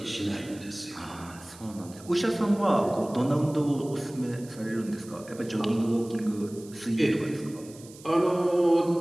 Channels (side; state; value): right; noise; hiss, 21 dB below the sound